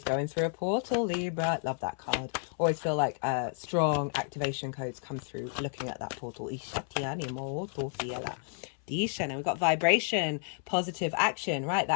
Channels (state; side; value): silent; right; 57 dB below the other